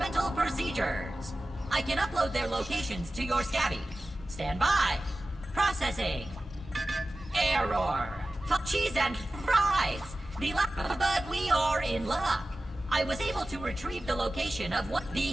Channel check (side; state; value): both; normal; correlation 0.95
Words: procedures. I can upload their locations to your Scabby. Stand by. Processing. Error. Cheese and fries. But we are in luck. I was able to retrieve the location of what